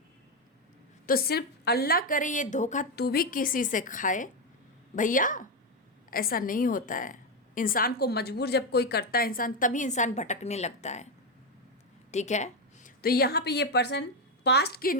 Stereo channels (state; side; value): normal; both; correlation 0.07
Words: तो सिर्फ अल्लाह करे ये धोखा तू भी किसी से खाए, भैया ऐसा नहीं होता है। इंसान को मजबूर जब कोई करता है इंसान, तभी इंसान भटकने लगता है। ठीक है, तो यहाँ पे ये पर्सन पास्ट की